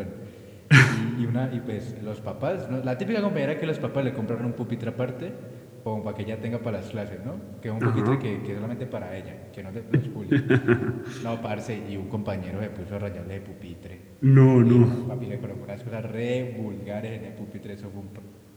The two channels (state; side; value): identical; both; correlation 1.00